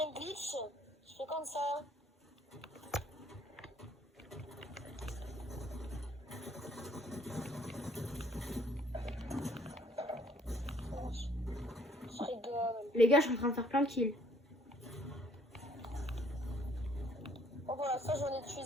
un glitch. Je fais comme ça. Je rigole. Les gars, je suis en train de faire plein de kills. Bon, voilà, ça, j'en ai tué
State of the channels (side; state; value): both; normal; correlation 0.63